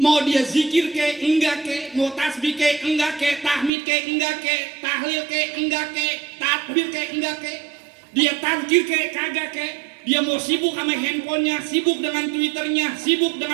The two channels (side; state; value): left; drops out; at 3.7 s